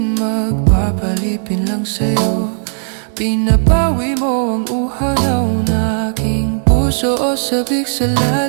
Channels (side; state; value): left; silent; digital silence